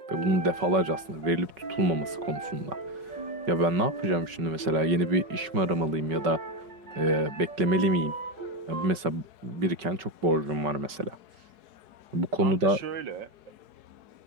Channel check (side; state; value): left; late; 5.3 ms